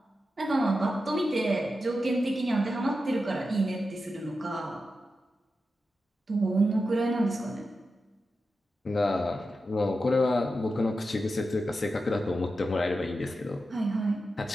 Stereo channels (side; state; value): both; normal; correlation 0.90